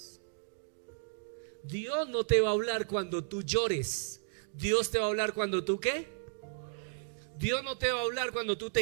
Dios no te va a hablar cuando tú llores. Dios te va a hablar cuando tú ¿qué? Dios no te va a hablar cuando tú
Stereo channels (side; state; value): left; silent; digital silence